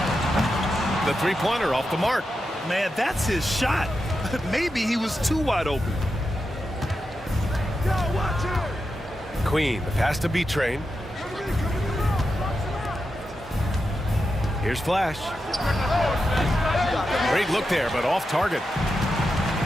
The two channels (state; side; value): normal; both; correlation 0.88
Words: The three-pointer off the mark. Man, that's his shot. Maybe he was too wide open. Queen, the pass to B-Train. Here's Flash. Great look there, but off target.